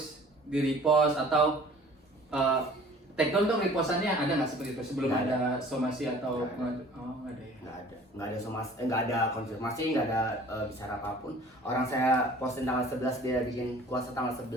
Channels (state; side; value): normal; both; correlation 0.49